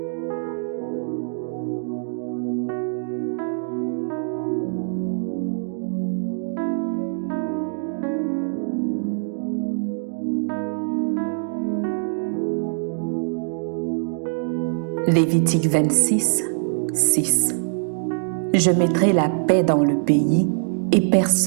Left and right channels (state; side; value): silent; left; digital silence